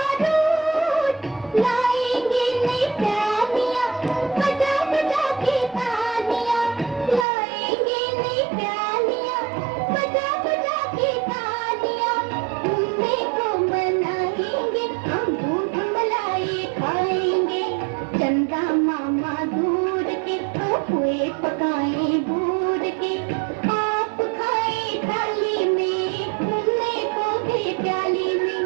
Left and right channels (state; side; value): drops out; left; at 7.2 s